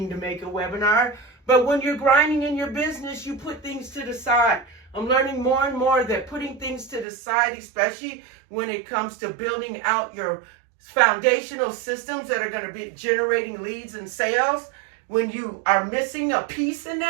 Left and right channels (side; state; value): left; drops out; at 7.1 s